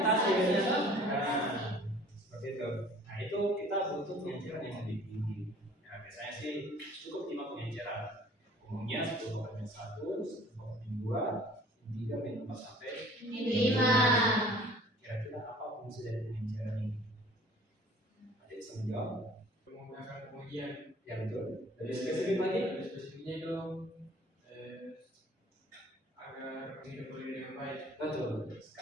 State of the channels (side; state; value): both; normal; correlation 0.50